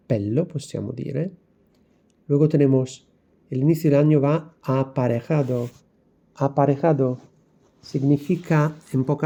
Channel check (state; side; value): identical; both; correlation 1.00